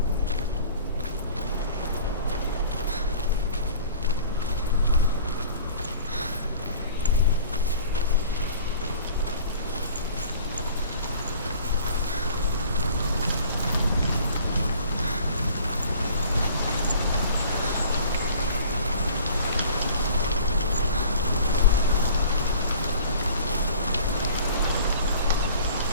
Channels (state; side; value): inverted; both; correlation -0.47